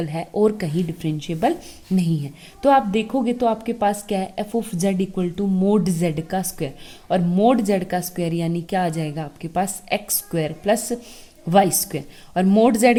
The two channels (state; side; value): identical; both; correlation 1.00